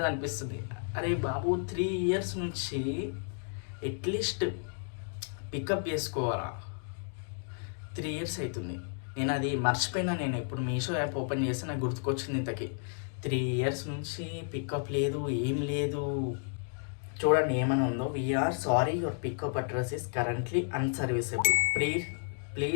అనిపిస్తుంది. అరే బాబు, 3 years నుంచి అట్లీస్ట్ పికప్ చేసుకోవాలా? 3 years అవుతుంది. నేను అది మర్చిపోయినా. నేను ఇప్పుడు మీషో యాప్ ఓపెన్ చేస్తే నాకు గుర్తుకొచ్చింది. ఇంతకీ 3 years నుంచి పికప్ లేదు, ఏం లేదు. చూడండి ఏమైనా ఉందో. We're sorry, your pickup address is currently unserviceable,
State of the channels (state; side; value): silent; right; 56 dB below the other